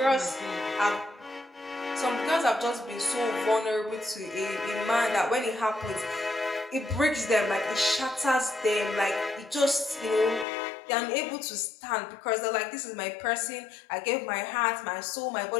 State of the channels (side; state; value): right; drops out; at 10.5 s